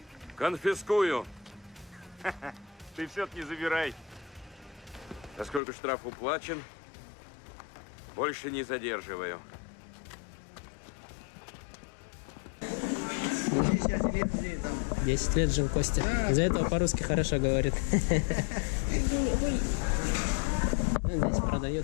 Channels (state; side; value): drops out; right; at 5.6 s